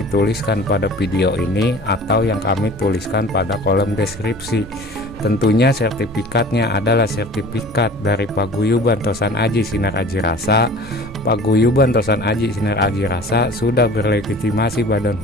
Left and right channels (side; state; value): both; normal; correlation 0.43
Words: tuliskan pada video ini atau yang kami tuliskan pada kolom deskripsi. Tentunya sertifikatnya adalah sertifikat dari Paguyuban Tosan Aji Sinar Aji Rasa. Paguyuban Tosan Aji Sinar Aji Rasa sudah berlegitimasi badan